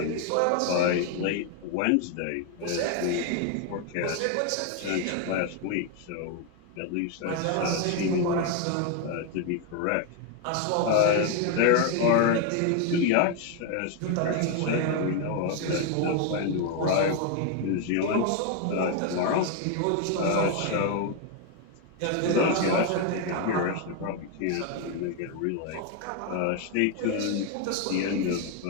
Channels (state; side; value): different; both; correlation 0.01